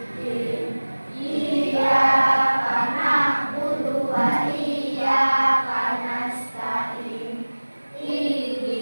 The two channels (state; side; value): inverted; both; correlation -1.00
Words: Iyyaka na'budu wa iyyaka nasta'in.